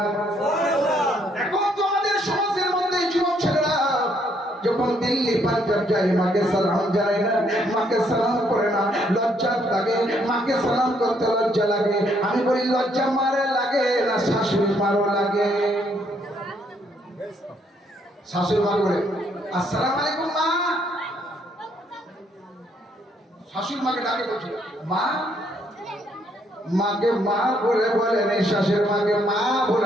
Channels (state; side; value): normal; both; correlation 0.70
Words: এখন তো আমাদের সমাজের মধ্যে যুবক ছেলেরা যখন দিল্লি পাঞ্জাব যায় মাকে সালাম জানায় না মাকে সালাম করে না লজ্জা লাগে মাকে সালাম করতে লজ্জা লাগে আমি বলি লজ্জা মারে লাগে না শাশুড়ি মারও লাগে শাশুড়ি মার বলে আসসালামু আলাইকুম মা শাশুড়ি মাকে ডাকে বলছে মা মাকে মা বলে বলে নেই শাশুড়ি মাকে মা